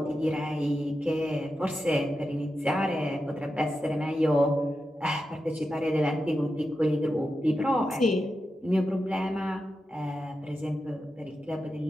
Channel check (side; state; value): both; normal; correlation 0.90